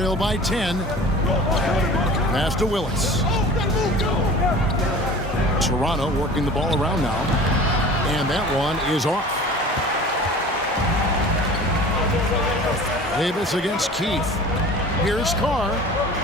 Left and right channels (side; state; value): both; normal; correlation 0.41